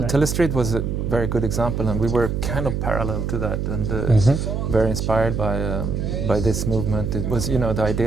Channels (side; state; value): right; noise; hum, 2 dB below the sound